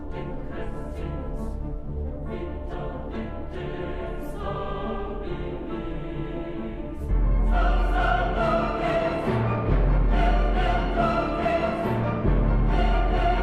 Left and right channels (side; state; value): both; identical; correlation 1.00